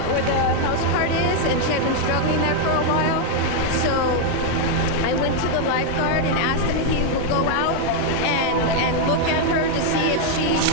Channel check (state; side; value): different; both; correlation 0.00